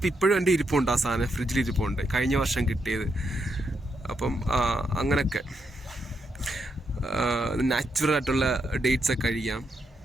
ഇപ്പോഴും എൻ്റെ ഇരിപ്പുണ്ട്. ആ സാധനം ഫ്രിഡ്ജിൽ ഇരിപ്പുണ്ട്, കഴിഞ്ഞ വർഷം കിട്ടിയത്. അപ്പം അങ്ങനെയൊക്കെ നാച്ചുറൽ ആയിട്ടുള്ള ഡേറ്റ്സൊക്കെ കഴിക്കാം.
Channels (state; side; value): normal; both; correlation 0.81